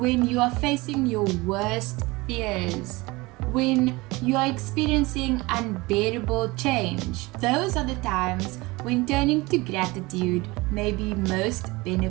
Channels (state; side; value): quieter; left; 22.7 dB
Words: you are facing your worst fears? When you are experiencing unbearable change? Those are the times when turning to gratitude may be most